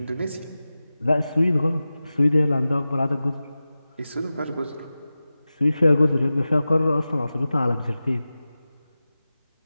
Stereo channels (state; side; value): inverted; both; correlation -0.95